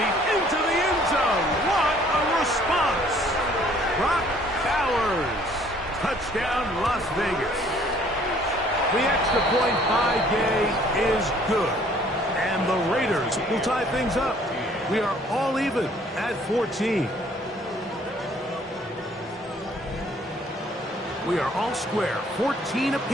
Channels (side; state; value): both; normal; correlation 0.58